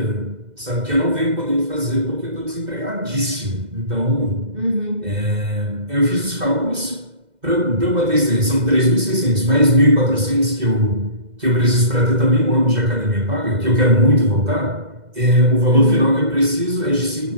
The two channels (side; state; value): left; late; 2.0 ms